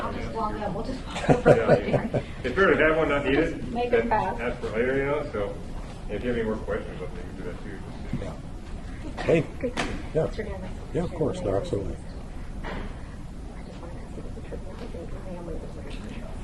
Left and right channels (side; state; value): both; identical; correlation 1.00